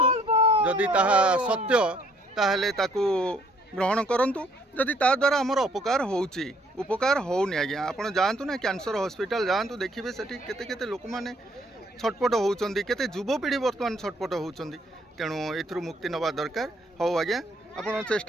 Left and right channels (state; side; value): normal; both; correlation 0.64